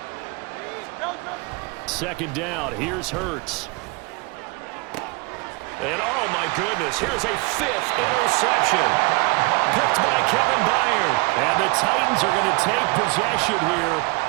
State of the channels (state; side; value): quieter; left; 27.3 dB